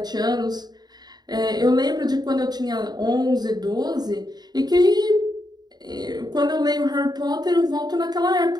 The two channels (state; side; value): late; left; 0.20 ms